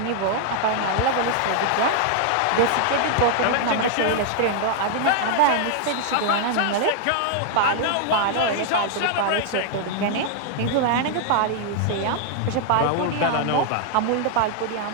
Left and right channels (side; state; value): both; different; correlation 0.00